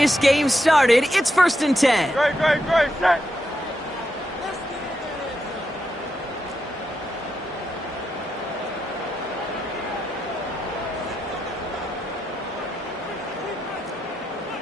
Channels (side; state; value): both; normal; correlation 0.84